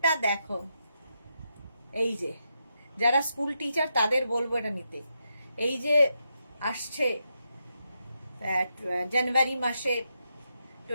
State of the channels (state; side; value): inverted; both; correlation -0.83